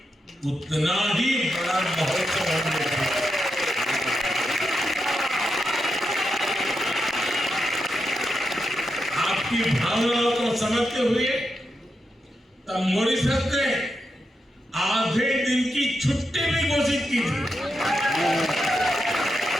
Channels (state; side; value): normal; both; correlation 0.86